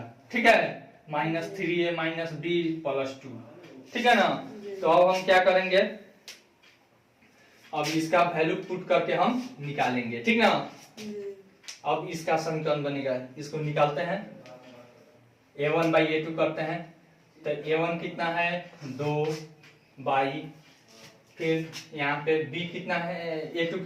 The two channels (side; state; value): both; identical; correlation 1.00